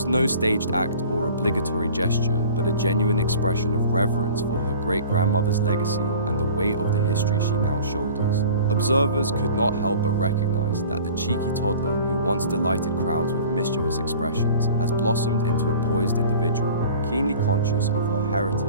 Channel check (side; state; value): both; inverted; correlation -0.43